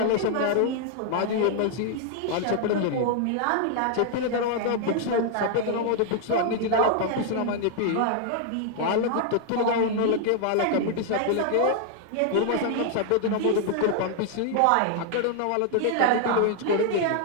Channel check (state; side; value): different; both; correlation 0.00